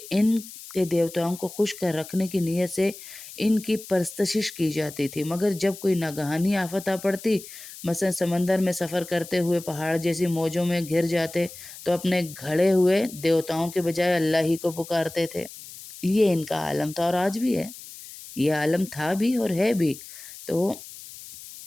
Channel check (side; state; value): left; noise; hiss, 15 dB below the sound